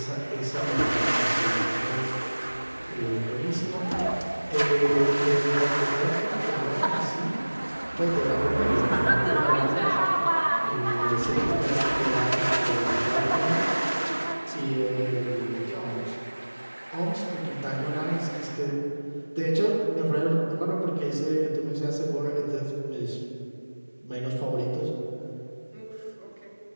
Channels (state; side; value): inverted; both; correlation -1.00